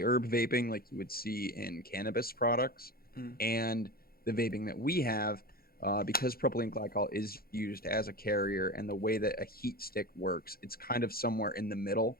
herb vaping, like you would see in cannabis products, and the vaping that we have, because propylene glycol is used as a carrier, and the way that a heat stick works, it's kind of somewhere in the middle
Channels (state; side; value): late; right; 0.44 ms